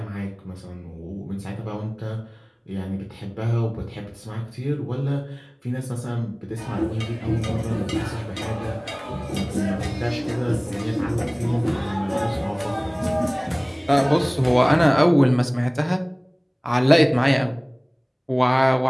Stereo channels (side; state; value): both; identical; correlation 1.00